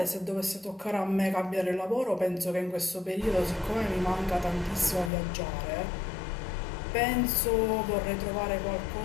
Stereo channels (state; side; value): drops out; right; at 5.1 s